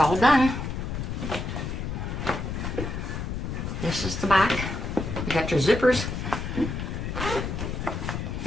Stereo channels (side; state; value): left; noise; rumble, 4 dB below the sound